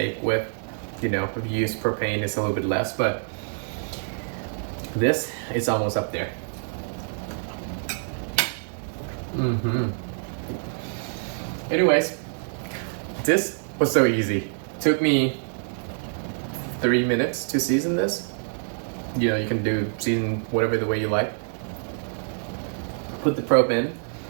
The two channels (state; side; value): silent; left; 59 dB below the other